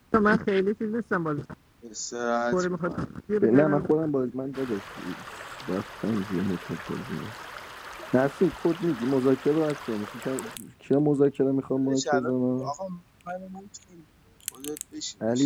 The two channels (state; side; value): identical; both; correlation 1.00